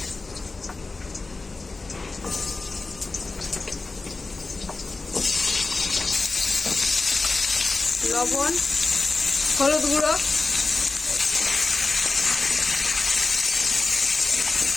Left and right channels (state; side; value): quieter; right; 3.7 dB